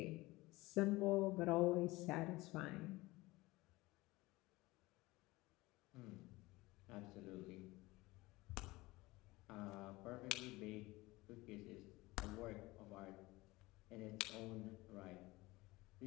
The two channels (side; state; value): right; quieter; 20.8 dB